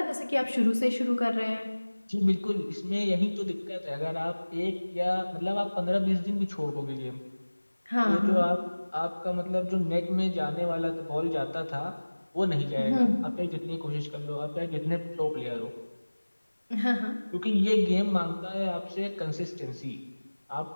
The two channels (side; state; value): both; inverted; correlation -1.00